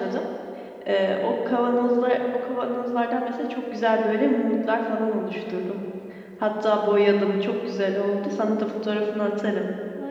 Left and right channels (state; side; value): identical; both; correlation 1.00